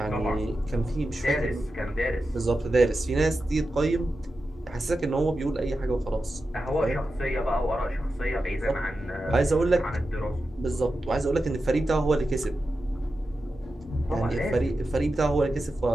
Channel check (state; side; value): normal; both; correlation 0.91